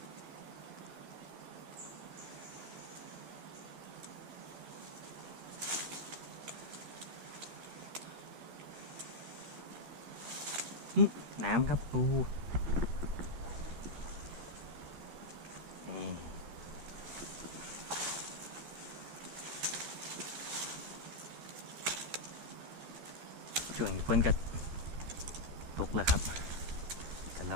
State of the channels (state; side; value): late; left; 13 ms